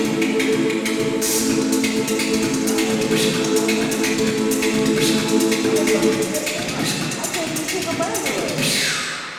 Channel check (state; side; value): identical; both; correlation 1.00